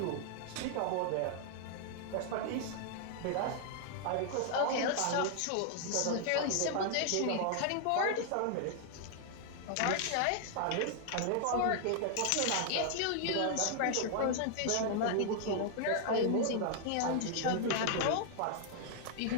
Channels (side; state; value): both; different; correlation 0.00